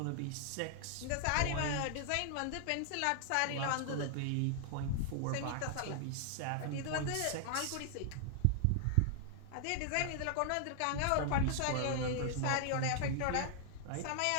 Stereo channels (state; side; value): different; both; correlation 0.00